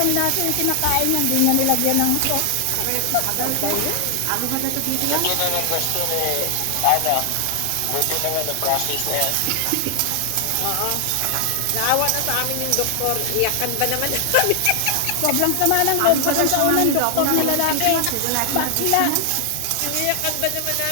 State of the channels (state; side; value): different; both; correlation 0.00